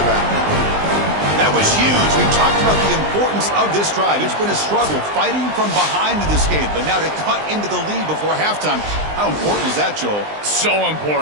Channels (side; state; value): left; late; 20 ms